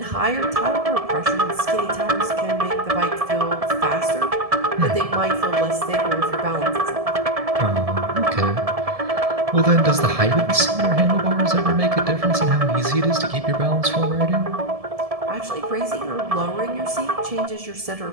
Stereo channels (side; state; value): left; late; 1.7 ms